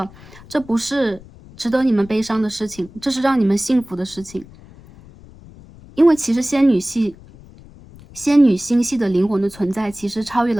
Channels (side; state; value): left; noise; rumble, 21 dB below the sound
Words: 这不是值得你们悲伤的事情，这是让你们幸福的事情。因为其实仙女星系的灵魂的存在其实超越